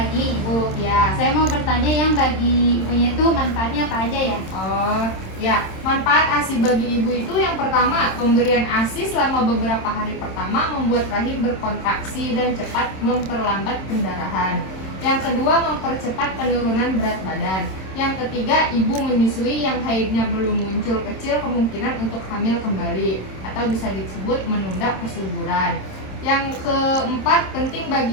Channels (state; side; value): late; right; 27 ms